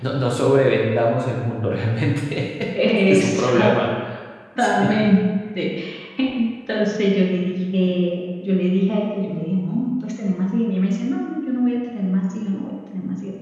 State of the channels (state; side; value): identical; both; correlation 1.00